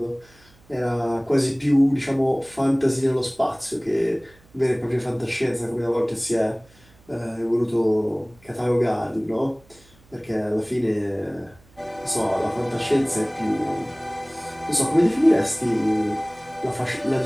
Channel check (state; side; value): noise; right; hum, 29 dB below the sound